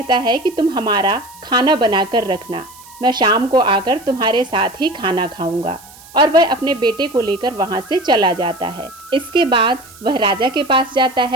है कि तुम हमारा खाना बनाकर रखना, मैं शाम को आकर तुम्हारे साथ ही खाना खाऊंगा। और वह अपने बेटे को लेकर वहां से चला जाता है। इसके बाद वह राजा के पास जाता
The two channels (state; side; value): noise; right; hiss, 21 dB below the sound